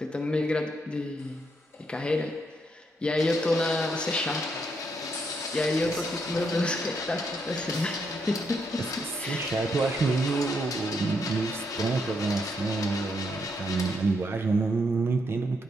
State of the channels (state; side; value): normal; both; correlation 0.77